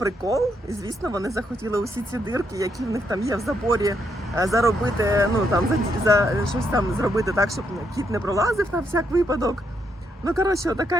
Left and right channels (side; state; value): both; normal; correlation 0.77